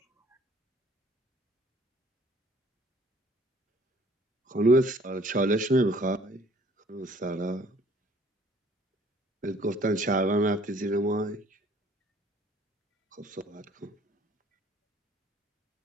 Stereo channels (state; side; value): normal; both; correlation 0.57